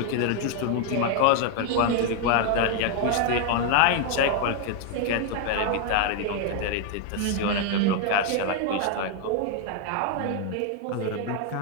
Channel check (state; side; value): different; both; correlation 0.00